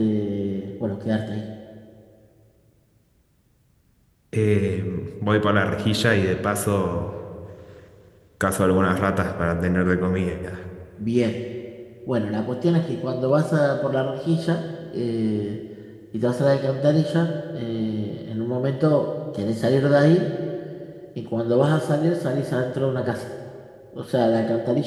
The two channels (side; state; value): both; identical; correlation 1.00